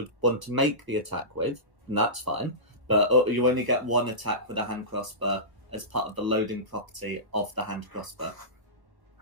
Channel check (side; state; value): left; late; 1.1 ms